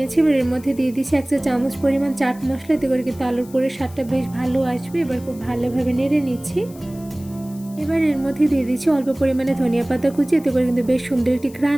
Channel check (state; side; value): noise; left; hiss, 22 dB below the sound